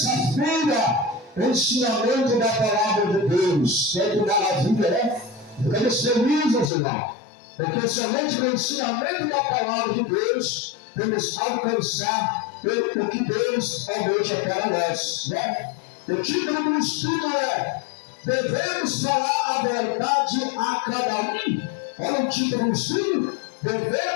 ensinamento da palavra de Deus. Que maravilha, né? Ficamos felizes, irmão, porque somente no ensinamento da palavra de Deus vamos alcançar o que Deus almeja para nós, né? O título do estudo é: devemos falar a verdade a cada um. Olha o título do estudo:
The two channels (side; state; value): right; drops out; at 6.7 s